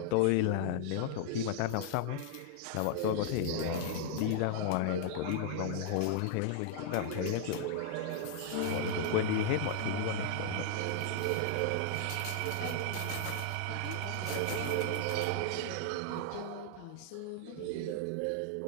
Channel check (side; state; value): both; different; correlation -0.01